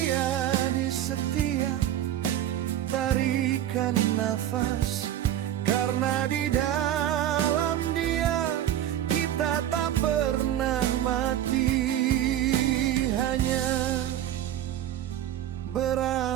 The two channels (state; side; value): quieter; left; 11.7 dB